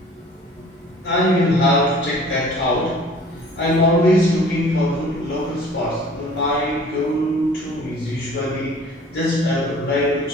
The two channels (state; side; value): normal; both; correlation 0.50